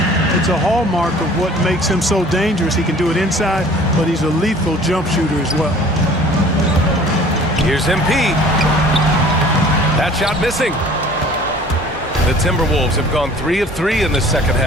It's a hallmark of what makes him so dangerous. He can do it inside, but he's a lethal jump shooter as well. Here's MP. That shot missing. The Timberwolves have gone 3 of 3 in this second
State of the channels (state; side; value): normal; both; correlation 0.49